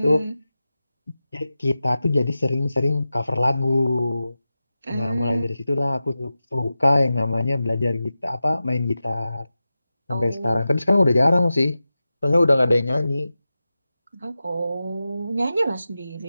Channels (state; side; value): inverted; both; correlation -0.93